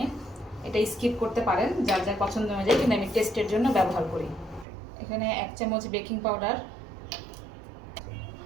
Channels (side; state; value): left; drops out; at 4.7 s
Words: এটা স্কিপ করতে পারেন যার যার পছন্দ অনুযায়ী, কিন্তু আমি টেস্টের জন্য ব্যবহার করি। এখানে 1 চামচ বেকিং পাউডার,